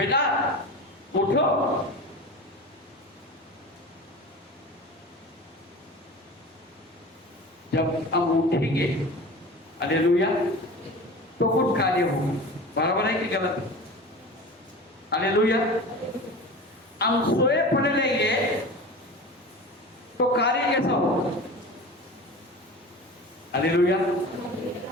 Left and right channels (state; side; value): normal; both; correlation 0.34